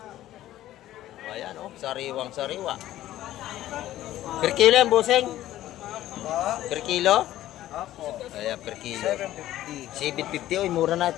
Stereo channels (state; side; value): quieter; right; 13.9 dB